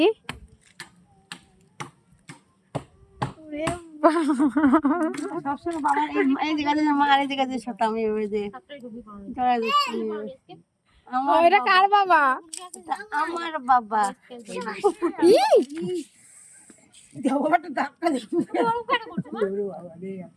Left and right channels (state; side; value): identical; both; correlation 1.00